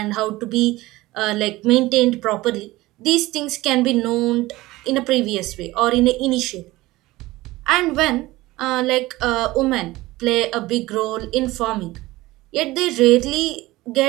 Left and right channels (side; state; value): left; quieter; 18.9 dB